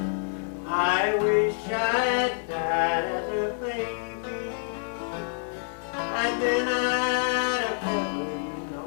I wish I had died as a baby, and then I'd have never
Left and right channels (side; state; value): right; silent; 60 dB below the other